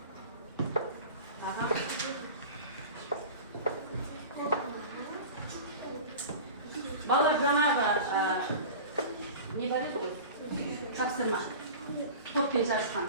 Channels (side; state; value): both; inverted; correlation -0.35